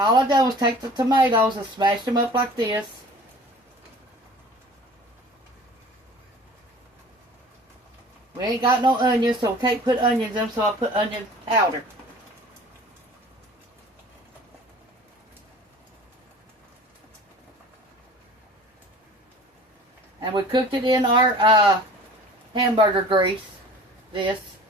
I done was take the tomatoes and smash them up like this. We ain't got no onions, so we can't put onions in them, so I put onion powder. And we cooked it in our hamburger grease. This.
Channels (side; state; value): both; normal; correlation 0.45